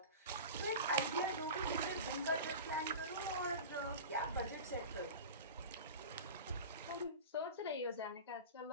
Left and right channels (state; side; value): inverted; both; correlation -0.31